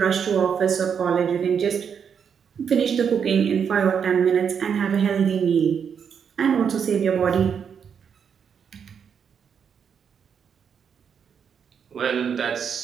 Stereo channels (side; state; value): left; quieter; 7.2 dB